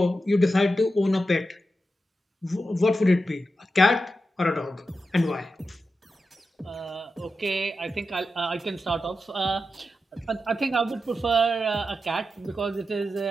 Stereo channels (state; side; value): normal; both; correlation 0.89